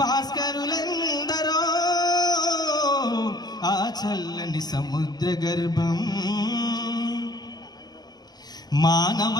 భాస్కరులెందరో ఆ చల్లని సముద్ర గర్భం మానవ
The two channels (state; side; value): late; right; 0.19 ms